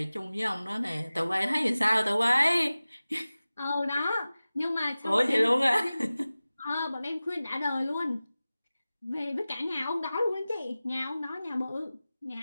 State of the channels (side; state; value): both; inverted; correlation -0.97